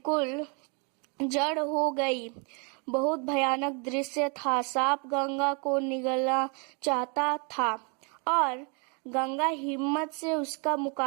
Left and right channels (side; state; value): left; quieter; 35.1 dB